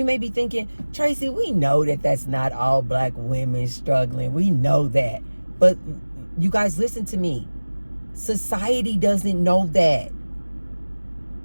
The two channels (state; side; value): inverted; both; correlation -1.00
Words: may be thinking, Tracy, we know that that's not all black women struggling. We know that. But you guys listen to me. Society doesn't know that.